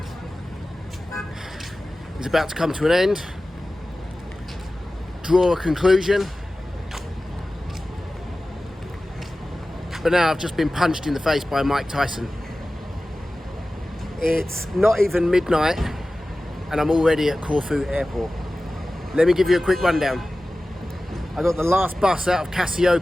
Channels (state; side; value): normal; both; correlation 0.96